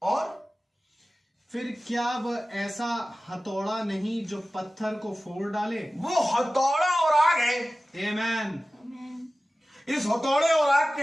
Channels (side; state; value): both; normal; correlation 0.96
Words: और फिर क्या वह ऐसा हथौड़ा नहीं जो पत्थर को फोड़ डाले? वो हथौड़ा और आग है। आमीन। इस हथौड़े और आग